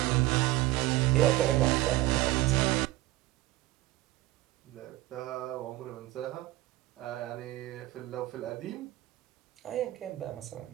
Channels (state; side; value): quieter; left; 17.5 dB